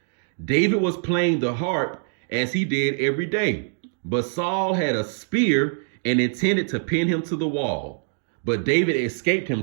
David was playing the harp as he did every day. But Saul had a spear and intended to pin him to the wall. But David escaped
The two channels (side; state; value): left; silent; digital silence